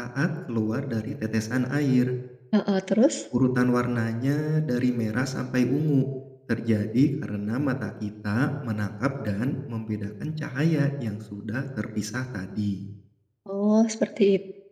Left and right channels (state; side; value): identical; both; correlation 1.00